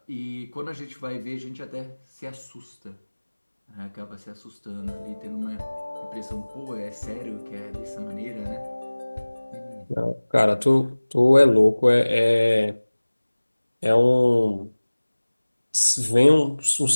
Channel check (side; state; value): both; inverted; correlation -1.00